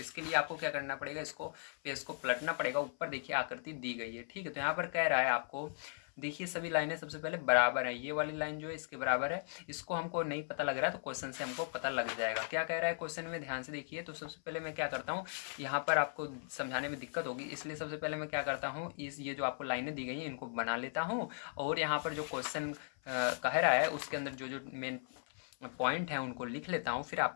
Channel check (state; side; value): silent; right; 53 dB below the other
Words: लिए आपको क्या करना पड़ेगा, इसको पेज को पलटना पड़ेगा, ऊपर देखिए आकृति दी गई है, ठीक है। तो यहाँ पर कह रहा है आपको, देखिए सभी लाइनें सबसे पहले बराबर है, ये वाली लाइन जो है इसके बराबर है। इसको हमको नहीं पता लग रहा है, तो क्वेश्चन से हमको पता लग जाएगा। क्या कह रहा है क्वेश्चन में, ध्यान से देखिए। तो सबसे पहले मैं क्या करता हूँ, यहाँ पर आपको समझाने में दिक्कत होगी, इसलिए सबसे पहले मैं क्या करता हूँ, ये जो आपको लाइनें दी गई हैं इनको बना लेता हूँ, और यहाँ पर जो क्वेश्चन कह रहा है उसके अंदर जो जो मेन पॉइंट है उनको लिख लेता हूँ, फिर